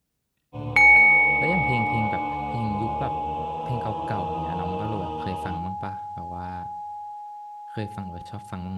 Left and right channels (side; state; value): both; identical; correlation 1.00